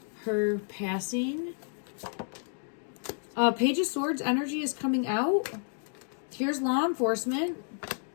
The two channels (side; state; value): right; silent; digital silence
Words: her passing? Page of Swords energy is coming out. Here's law enforcement.